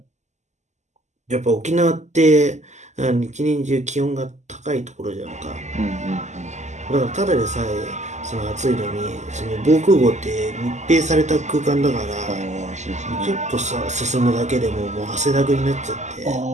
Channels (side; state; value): left; late; 0.34 ms